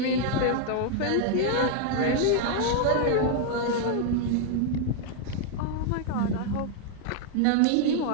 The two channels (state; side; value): different; both; correlation 0.00